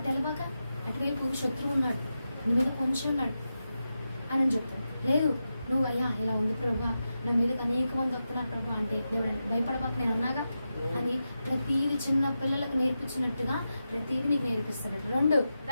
అటువైపు శత్రువు ఉన్నాడు, నీ మీద కొంచెం ఉన్నాడు అని చెప్తాను. లేదు, నువ్వు అయ్యా ఇలా ఉంది ప్రభా, నా మీదకి అనేక మంది వస్తున్నారు ప్రభా అంటే దేవుడు భయపడబాక నేను అన్నాగా అని ప్రతిదీ చిన్న పిల్లలకు నేర్పించినట్టుగా ప్రతిదీ నీకు నేర్పిస్తాడు. 2,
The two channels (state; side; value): inverted; both; correlation -0.90